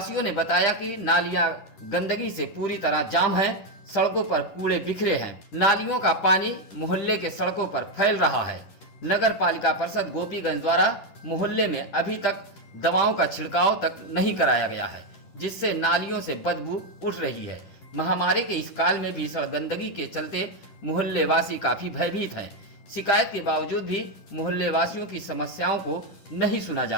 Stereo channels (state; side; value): late; right; 10 ms